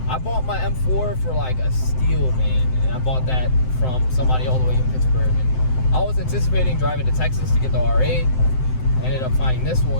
I bought my M4 for like a steal, man. And I bought that from somebody all the way in Pittsburgh. And I was anticipating driving to Texas to get the R8. I ended up finding this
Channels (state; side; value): late; right; 7.8 ms